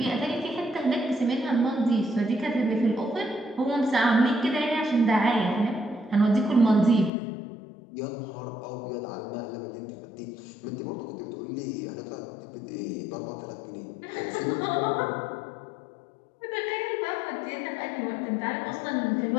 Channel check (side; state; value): right; drops out; at 7.1 s